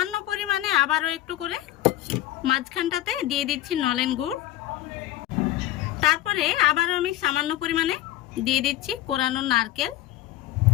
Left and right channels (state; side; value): quieter; right; 14.2 dB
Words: পরিমাণে আবারও একটু করে মাঝখানটাতে দিয়ে দিচ্ছি নলেন গুড়। তারপরে আবার আমি সামান্য পরিমাণে দিয়ে দিচ্ছি কোরানো নারকেল।